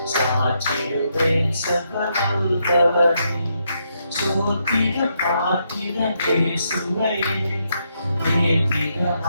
சாற்றிடுவேன் சகலவல்லவனை, சோத்திர பாத்திர இயேசுவை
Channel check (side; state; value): both; inverted; correlation -0.79